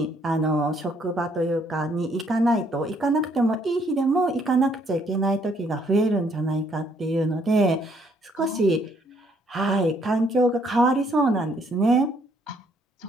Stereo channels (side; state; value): both; normal; correlation 0.68